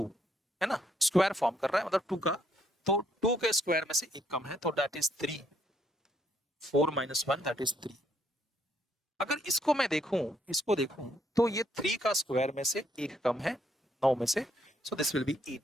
है ना, स्क्वायर फॉर्म कर रहा है मतलब 2 का. तो 2 के स्क्वायर में से एक कम है तो that is 3. 4 minus 1 that is 3. अगर इसको मैं इसको देखूं तो ये 3 का स्क्वायर में से एक कम है 9 में से. सो दिस विल बी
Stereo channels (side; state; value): both; normal; correlation 0.71